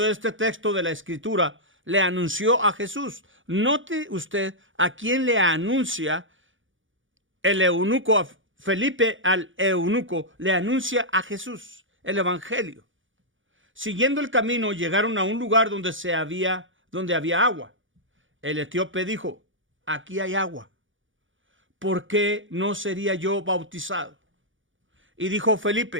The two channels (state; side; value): late; left; 0.56 ms